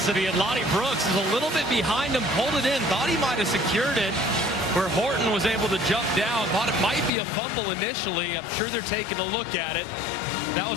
And Lonnie Brooks is a little bit behind him, pulled it in, thought he might have secured it, where Horton was able to jump down, thought it might be a fumble initially. I'm sure they're taking a look at it. That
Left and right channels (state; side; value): drops out; right; at 7.1 s